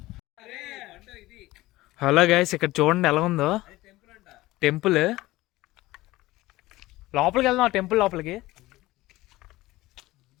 హలో గైస్, ఇక్కడ చూడండి ఎలా ఉందో టెంపుల్. లోపలికి వెళ్దాం, టెంపుల్ లోపలికి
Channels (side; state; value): right; quieter; 18.3 dB